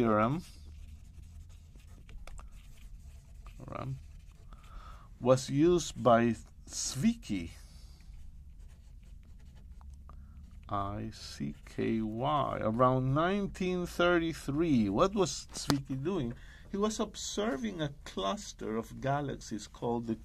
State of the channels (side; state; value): both; identical; correlation 1.00